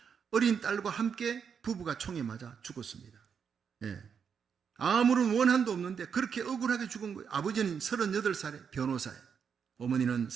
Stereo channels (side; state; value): left; quieter; 6.9 dB